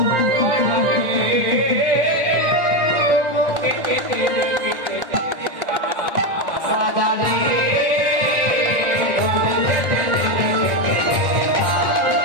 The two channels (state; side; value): late; left; 1.6 ms